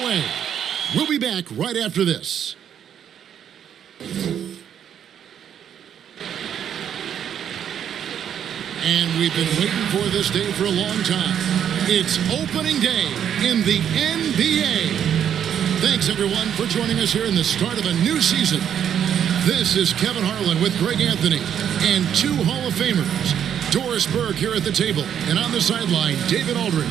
We'll be back right after this. And we've been waiting for this day for a long time. It's opening day in the NBA. Thanks, everyone, for joining us here in the start of a new season. This is Kevin Harlan with Greg Anthony and two Hall of Famers. Doris Burke here at the table, and on the sideline, David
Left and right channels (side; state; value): left; quieter; 9.1 dB